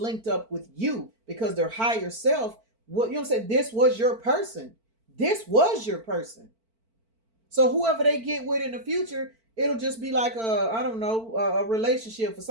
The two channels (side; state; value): left; late; 4.5 ms